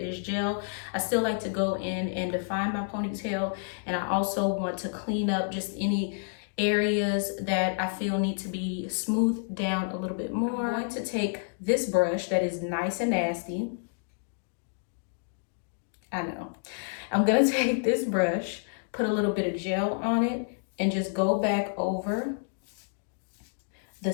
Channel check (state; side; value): silent; right; digital silence